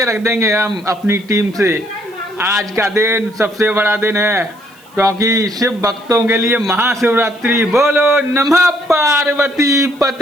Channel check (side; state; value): right; noise; hiss, 28 dB below the sound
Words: रख देंगे हम अपनी टीम से। आज का दिन सबसे बड़ा दिन है क्योंकि शिव भक्तों के लिए महाशिवरात्रि। बोलो नमः पार्वती